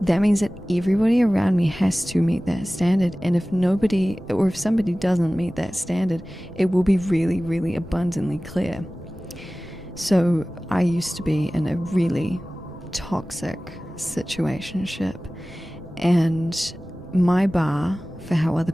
that means that everybody around me has to meet that standard. And if nobody, or if somebody doesn't meet that standard, it will be really, really abundantly clear. So I used to be in a really toxic situationship, and my bar for how other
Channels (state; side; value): normal; both; correlation 0.97